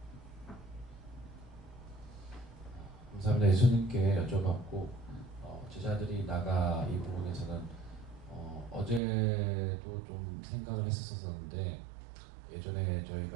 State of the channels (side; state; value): left; drops out; at 9.0 s